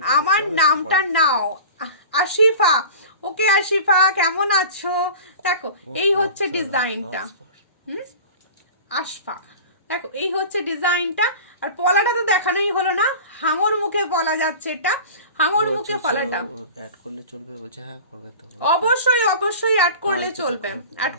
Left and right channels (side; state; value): both; inverted; correlation -0.37